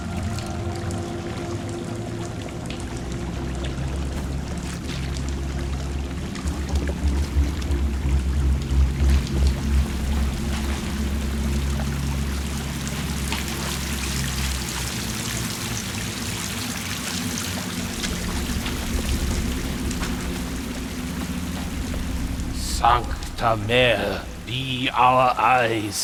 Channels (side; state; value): both; identical; correlation 1.00